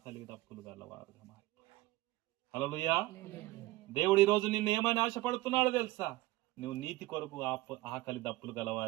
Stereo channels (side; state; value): left; quieter; 18.7 dB